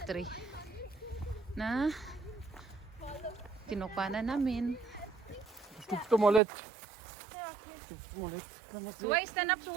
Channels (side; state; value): left; drops out; at 6.4 s